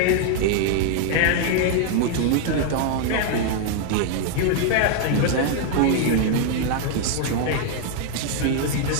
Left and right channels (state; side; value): different; both; correlation 0.00